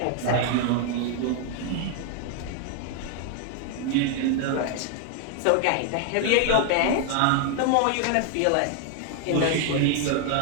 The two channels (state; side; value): different; both; correlation 0.00